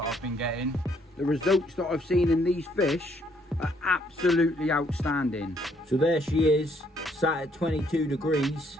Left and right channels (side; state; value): both; normal; correlation 0.68